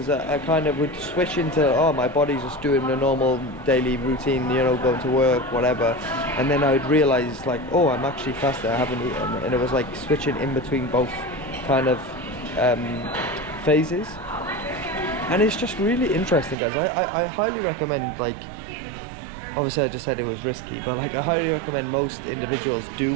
I kind of would switch into, oh, my body's just doing a normal daily routine, you know, going to work, whatever, and then I would realize like, oh, I'm actually fasting, I haven't eaten. And it was like switching in between both kind of phases, and it's just really interesting, guys. I highly recommend, like, obviously I just said it was risky, but like, I highly recommend most individuals do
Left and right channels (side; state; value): left; drops out; at 16.6 s